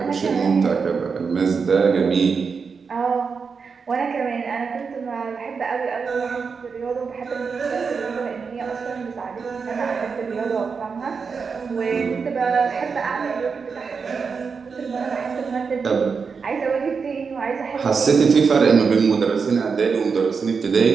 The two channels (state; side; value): quieter; left; 5.4 dB